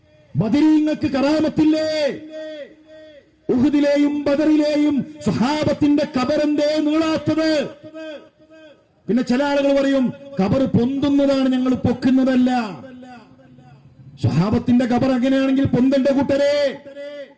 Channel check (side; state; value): both; identical; correlation 1.00